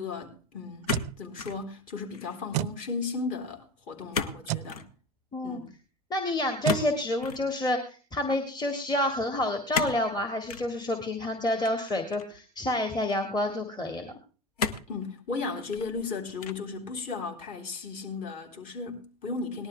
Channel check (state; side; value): normal; both; correlation 0.34